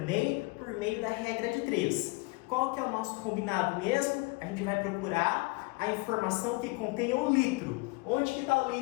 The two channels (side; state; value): right; quieter; 26.4 dB